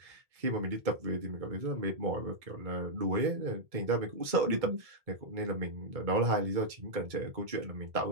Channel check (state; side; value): late; left; 2.2 ms